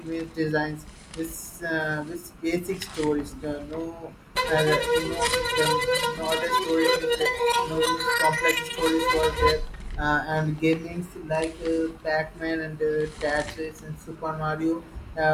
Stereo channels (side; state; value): both; identical; correlation 1.00